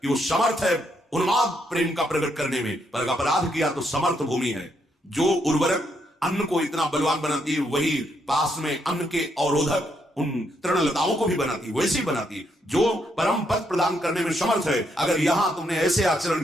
कि वो समर्थ है उन्माद प्रेम का प्रकट करने में, पर अपराध किया तो समर्थ भूमि है। जो उर्वरक अन्न को इतना बलवान बनाती है, वही पास में अन्न के अवरोधक उन तृणलताओं को भी बनाती, वैसे ही बनाती, जो परम पद प्रदान करने में समर्थ है। अगर यहां तुमने ऐसे आचरण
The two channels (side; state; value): both; normal; correlation 0.76